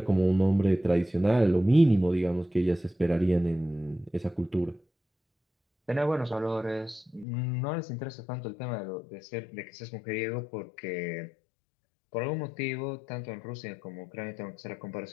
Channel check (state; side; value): drops out; right; at 7.2 s